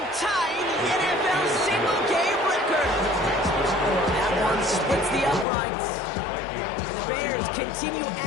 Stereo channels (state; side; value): drops out; right; at 5.5 s